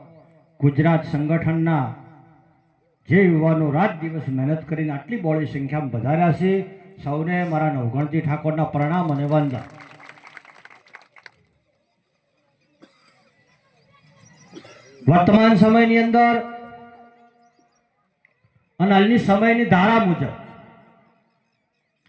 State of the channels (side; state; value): both; identical; correlation 1.00